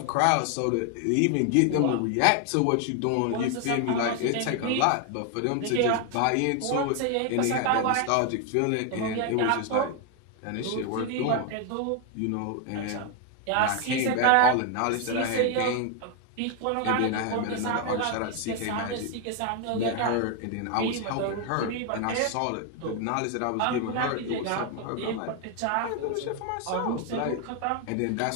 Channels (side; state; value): both; different; correlation 0.01